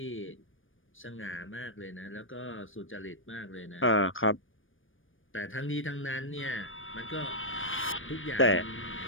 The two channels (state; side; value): late; right; 0.58 ms